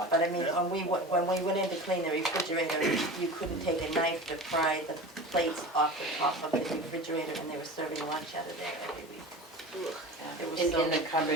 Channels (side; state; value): both; normal; correlation 0.33